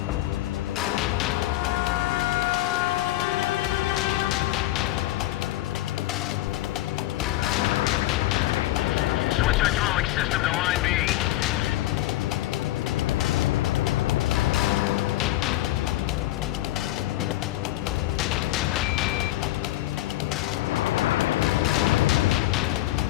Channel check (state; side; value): quieter; right; 16.1 dB